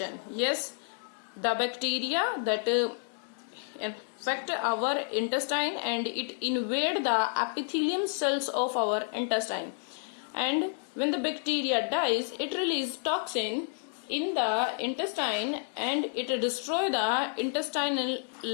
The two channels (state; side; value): silent; right; 58 dB below the other